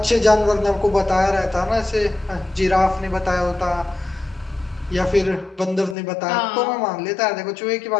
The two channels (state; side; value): drops out; right; at 6.0 s